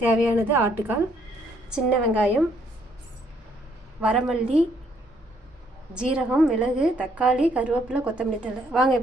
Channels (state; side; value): normal; both; correlation 0.68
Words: தேவையானது ஆட்டுக்கால், சின்ன வெங்காயம், வரமல்லி, ஜீரகம், மிளகு, தக்காளி, கருவேப்பிலை, கொத்தமல்லி தழை. வாங்க